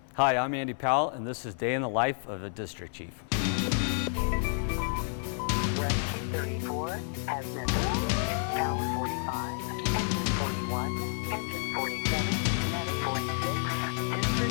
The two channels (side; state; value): right; silent; 58 dB below the other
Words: Hi, I'm Andy Powell, and this is Day in the Life of a District Chief. Rescue 34 has missing. Tower 45, engine 41, engine 47, medic 46,